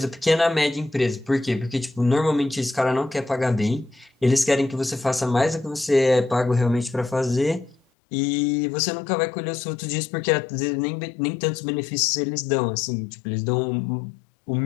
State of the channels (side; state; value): right; drops out; at 7.8 s